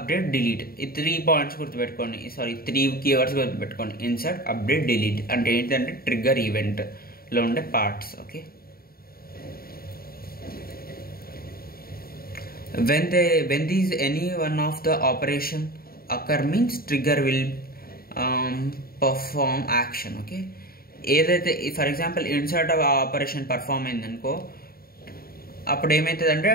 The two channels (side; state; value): right; late; 0.43 ms